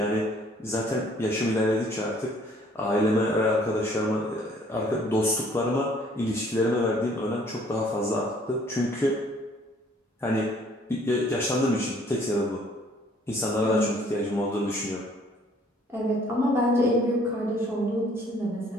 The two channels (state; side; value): normal; both; correlation 0.59